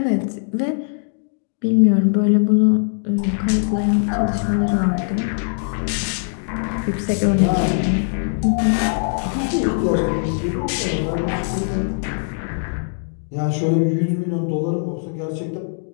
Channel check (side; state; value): right; silent; digital silence